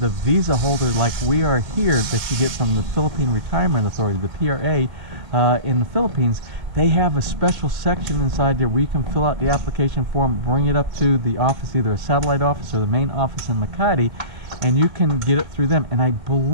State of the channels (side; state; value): left; late; 1.9 ms